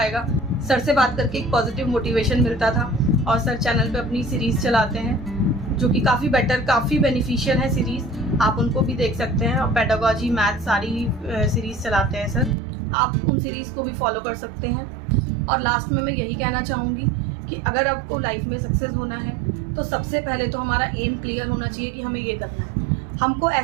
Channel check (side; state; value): left; drops out; at 12.6 s